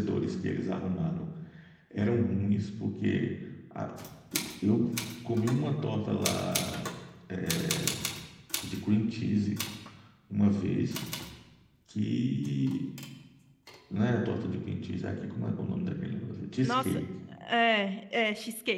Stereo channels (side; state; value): both; identical; correlation 1.00